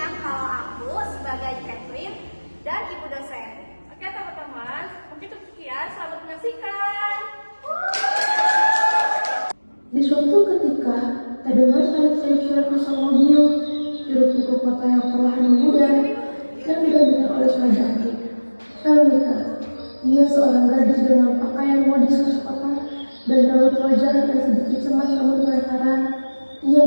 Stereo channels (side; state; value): both; inverted; correlation -1.00